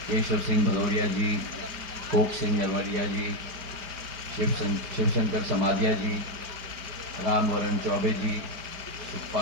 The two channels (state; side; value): late; left; 4.9 ms